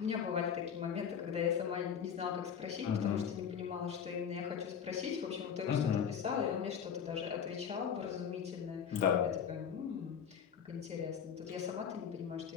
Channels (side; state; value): right; quieter; 7.7 dB